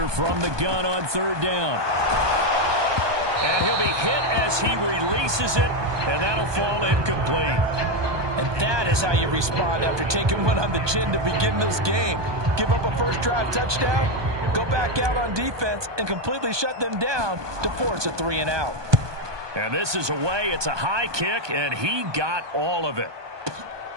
from the gun on third down. And he'll be hit as he releases it, and that'll fall incomplete. And that is how you respond after taking one on the chin to begin this game. Give up a first drive touchdown, go back out on defense, and completely shut them down to force a 3-and-out. And this is away. It's a high kick, and he got all of it.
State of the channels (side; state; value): left; late; 1.2 ms